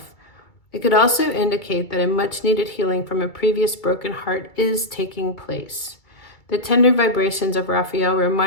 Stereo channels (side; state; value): right; late; 2.3 ms